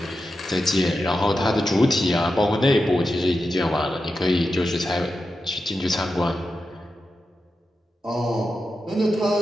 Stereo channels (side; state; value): both; normal; correlation 0.90